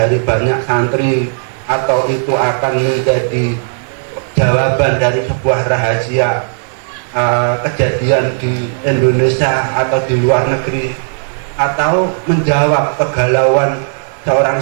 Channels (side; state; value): left; silent; digital silence